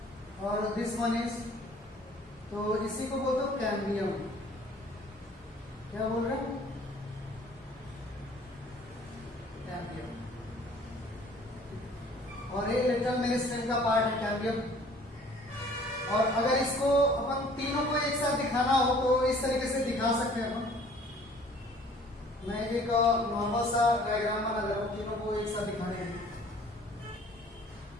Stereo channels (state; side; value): normal; both; correlation 0.53